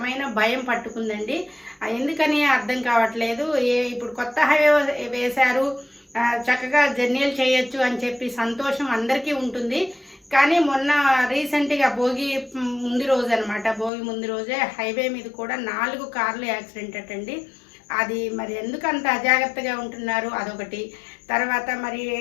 భయం పట్టుకుందండి. ఎందుకని అర్థం కావట్లేదు. ఇప్పుడు కొత్త హైవే వేశారు, చక్కగా జర్నీలు చేయొచ్చు అని చెప్పి సంతోషం అందరికీ ఉంటుంది. కానీ మొన్న రీసెంట్గా భోగి ముందు రోజు అనమాట, భోగి ముందు రోజే హైవే మీద కూడా 4 కార్లు యాక్సిడెంట్ అటండి. అది మరి ఎందుకు అంత అజాగ్రత్తగా ఉంటున్నారు అదొకటి. తర్వాత మరి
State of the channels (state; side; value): drops out; right; at 13.9 s